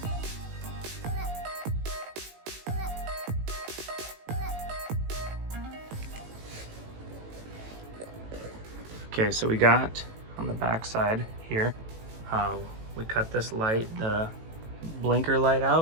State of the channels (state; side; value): late; left; 18 ms